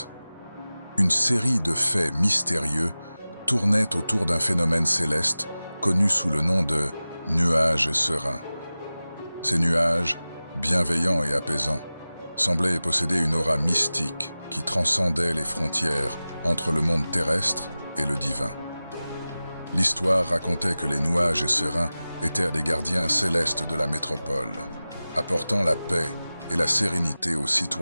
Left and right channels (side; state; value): both; inverted; correlation -0.97